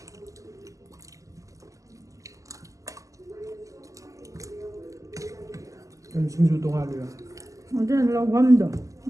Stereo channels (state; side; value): late; left; 0.16 ms